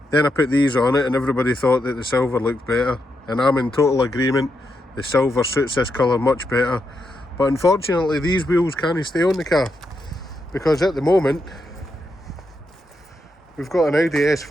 Then I put these on it and everybody thought that the silver looked better, and I'm in total agreement. The silver suits this colour much better, but unfortunately these wheels can't stay on the car because at the moment we've got an Audi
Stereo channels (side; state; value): both; normal; correlation 0.83